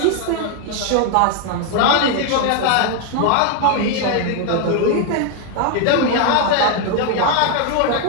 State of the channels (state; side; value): different; both; correlation 0.01